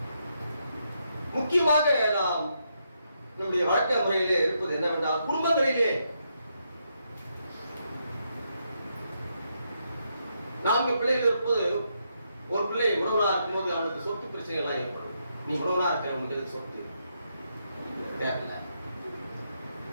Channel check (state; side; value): inverted; both; correlation -0.79